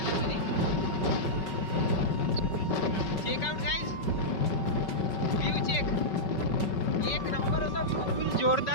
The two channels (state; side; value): late; right; 5.3 ms